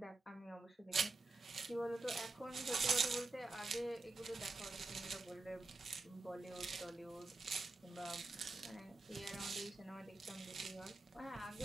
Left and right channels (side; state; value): left; quieter; 3.1 dB